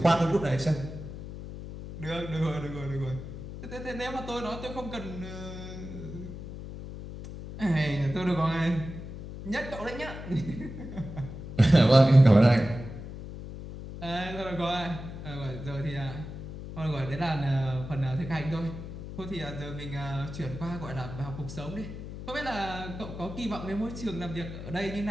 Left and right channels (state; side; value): noise; left; hum, 10 dB below the sound